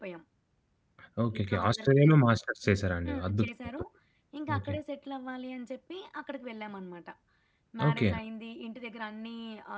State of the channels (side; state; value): both; identical; correlation 1.00